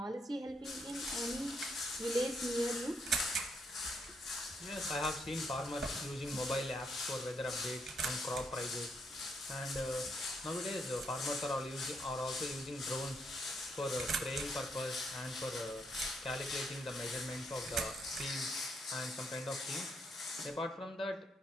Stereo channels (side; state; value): both; normal; correlation 0.75